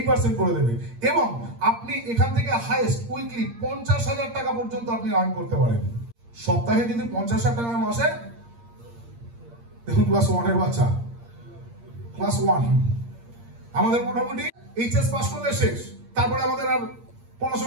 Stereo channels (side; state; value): left; late; 8.6 ms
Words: করে দেবে, এবং আপনি এখান থেকে হাইয়েস্ট উইকলি 50,000 টাকা পর্যন্ত আপনি আর্ন করতে পারেন। সপ্তাহে যদি 50,000 টাকা মাসে, দেখুন ক্লাস 1 এর বাচ্চা, ক্লাস 1 আমাদের মোটামুটি এইচএস পাস করলে শেষ, তারপরে আমাদের আর